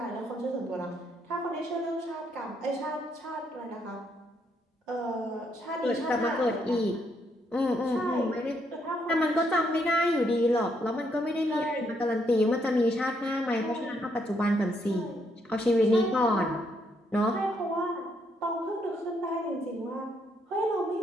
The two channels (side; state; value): both; normal; correlation 0.74